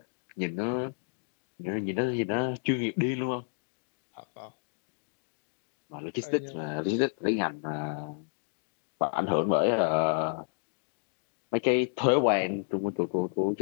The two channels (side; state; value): right; silent; digital silence